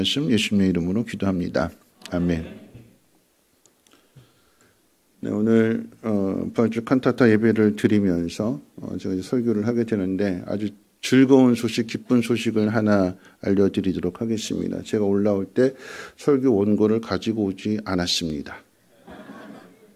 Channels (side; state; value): both; identical; correlation 1.00